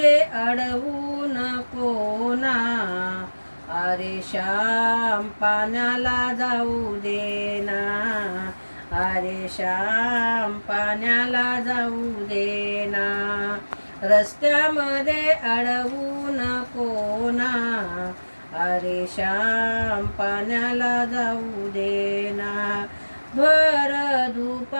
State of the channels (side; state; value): both; inverted; correlation -1.00